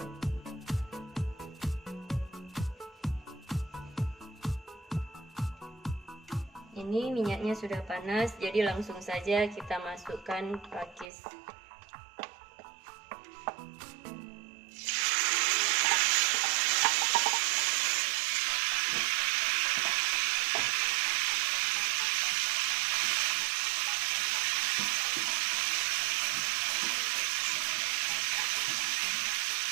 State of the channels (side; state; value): left; drops out; at 11.1 s